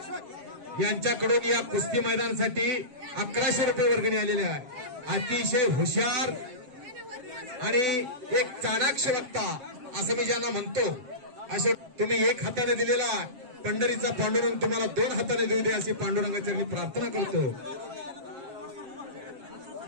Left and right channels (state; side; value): late; left; 7.5 ms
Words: यांच्याकडून या कुस्ती मैदानासाठी 1100 रुपये वर्गणी आलेले आहे. अतिशय हुशार आणि एक चाणाक्ष वक्ता असं मी ज्यांना म्हणतो असे तुम्ही एक हाताने दिलेला पंढरीचा पांडुरंग तुम्हाला 2 हाताने देऊ दे अशी पांडुरंगाची प्रार्थना करतो.